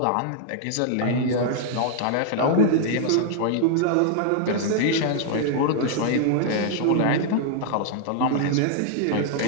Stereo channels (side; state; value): both; different; correlation -0.01